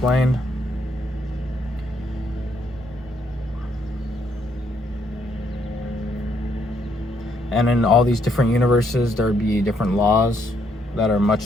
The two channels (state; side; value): normal; both; correlation 0.72